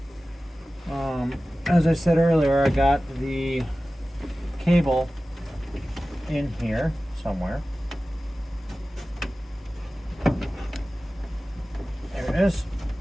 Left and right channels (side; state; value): both; normal; correlation 0.96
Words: As I said earlier, I got the cable in here somewhere. There it is.